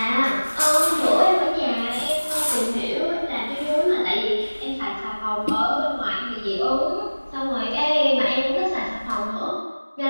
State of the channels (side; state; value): both; inverted; correlation -1.00